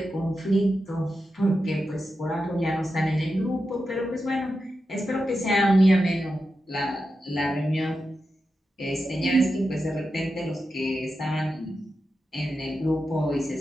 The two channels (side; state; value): both; normal; correlation 0.89